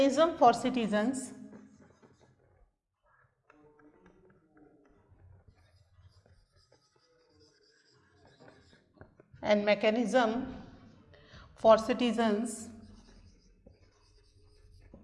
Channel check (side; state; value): both; identical; correlation 1.00